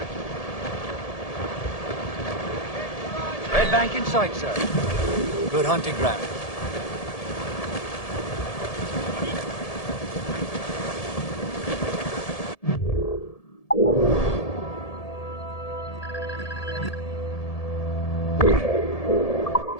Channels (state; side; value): late; right; 1.7 ms